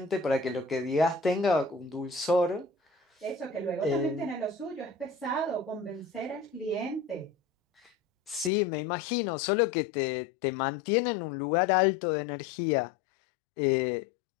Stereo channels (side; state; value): right; drops out; at 8.5 s